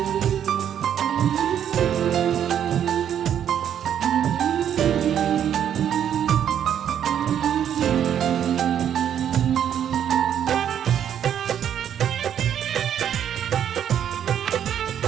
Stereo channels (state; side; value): quieter; left; 9.5 dB